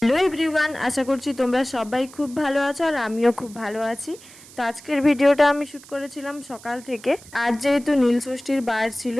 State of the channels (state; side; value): noise; right; hiss, 21 dB below the sound